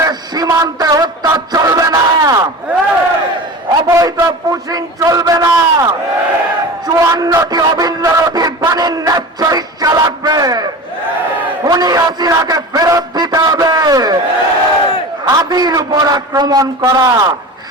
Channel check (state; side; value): normal; both; correlation 0.32